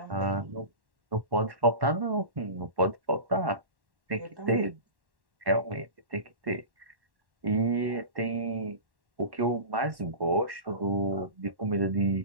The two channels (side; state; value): left; late; 1.1 ms